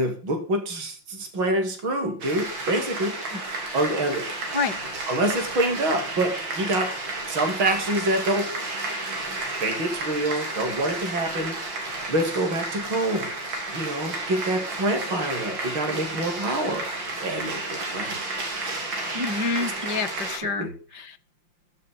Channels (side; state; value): left; late; 5.7 ms